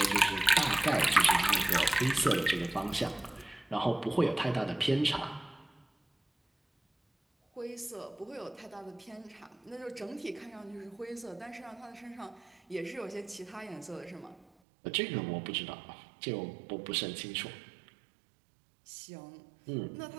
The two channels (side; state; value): left; drops out; at 14.5 s